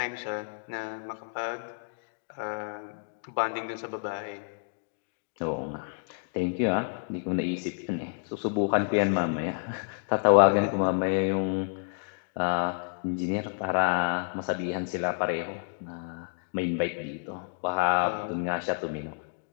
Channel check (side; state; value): right; silent; digital silence